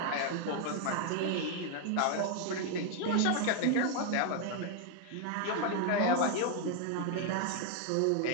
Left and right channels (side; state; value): both; different; correlation 0.00